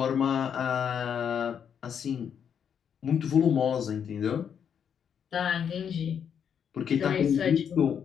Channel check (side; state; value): right; quieter; 7.9 dB